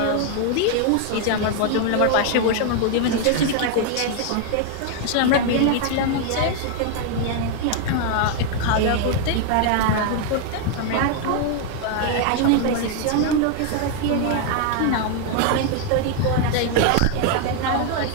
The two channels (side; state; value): both; different; correlation 0.00